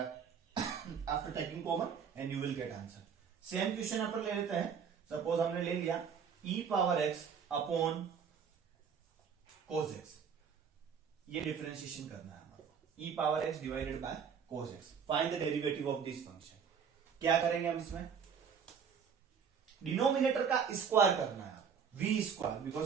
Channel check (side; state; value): left; quieter; 6.9 dB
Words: after taking common and you will get answer. Same question यहाँ पर ले लेते हैं। सपोज हमने ले लिया e power x upon cos x, ये डिफरेंशिएशन करना है हमारे को, e power x divided by cos x। Find the derivative of this function. क्या करेंगे हम इसमें, डिनोमिनेटर का स्क्वायर करना है, v square,